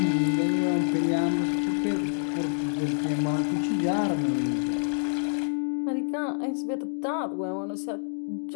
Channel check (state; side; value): silent; right; digital silence